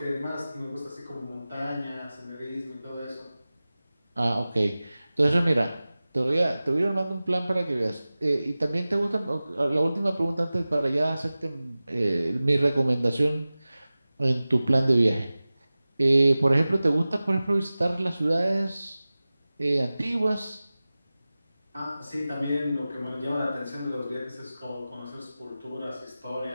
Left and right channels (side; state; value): both; inverted; correlation -0.97